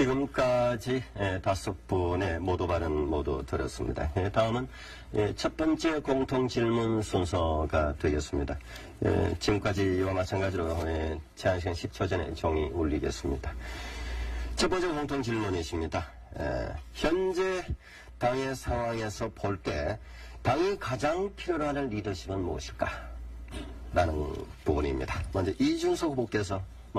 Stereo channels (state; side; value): identical; both; correlation 1.00